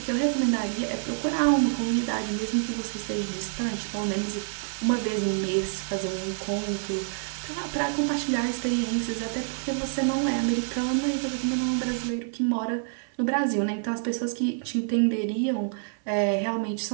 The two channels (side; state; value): left; silent; 60 dB below the other